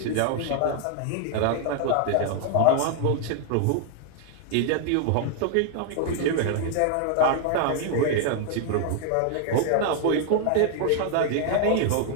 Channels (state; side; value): different; both; correlation 0.00